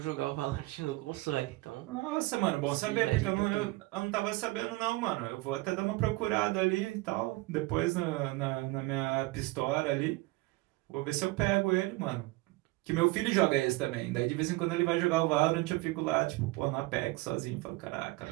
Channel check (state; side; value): quieter; left; 21.4 dB